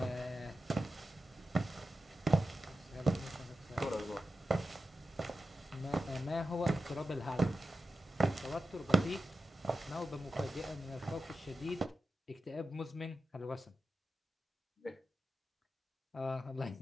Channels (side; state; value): both; normal; correlation 0.91